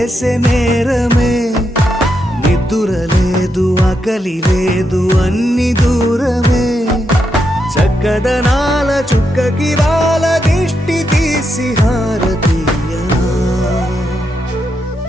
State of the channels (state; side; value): normal; both; correlation 0.83